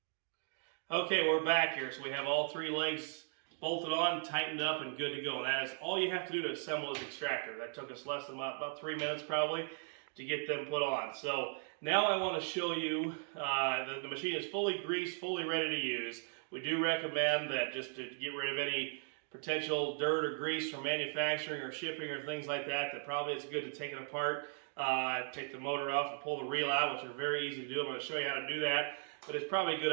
Okay, we're back here. So we have all 3 legs bolted on, tightened up, and good to go. And that is all you have to do to assemble this Extractor. That took us less than about 3 minutes probably to get them put on. So now I want to show you, the machine is fully greased, fully ready to use. We do recommend that just to get rid of any potential dirt or grease from manufacturing or shipping or things like that, that probably it's good to take it apart, take the motor off and pull the reel out, which are very easy to do. I'm going to show you how to do that. But it's probably a good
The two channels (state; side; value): silent; left; 53 dB below the other